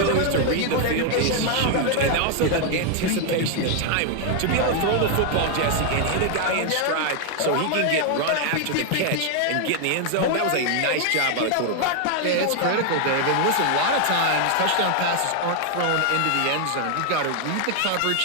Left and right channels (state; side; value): different; both; correlation 0.00